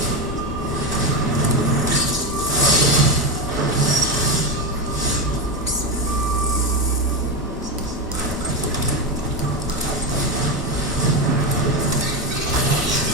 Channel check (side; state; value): both; normal; correlation 0.13